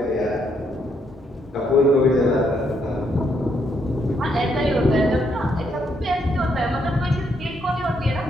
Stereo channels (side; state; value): both; normal; correlation 0.75